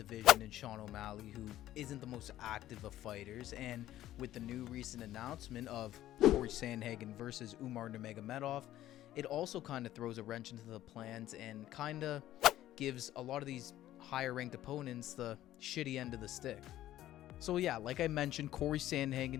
in Sean O'Malley who isn't the most active of fighters, and with the new recent announcement of Corey Sandhagen versus Umar Nurmagomedov, it also kind of throws a wrench into the plans and kind of gives a lot of these higher ranked opponents the shitty end of the stick. So yeah, like I mentioned, Corey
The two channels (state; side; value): quieter; right; 13.7 dB